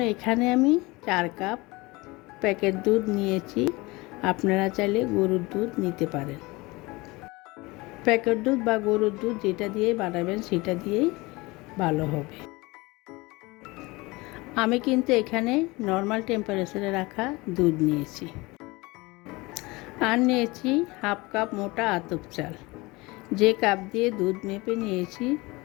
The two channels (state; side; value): quieter; right; 23.1 dB